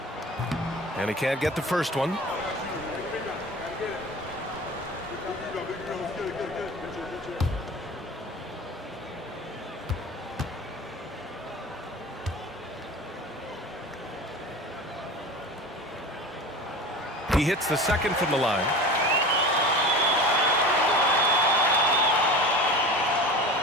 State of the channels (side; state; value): both; normal; correlation 0.34